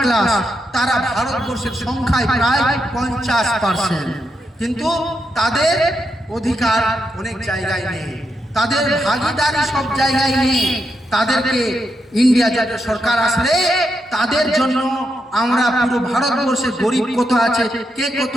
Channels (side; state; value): both; normal; correlation 0.83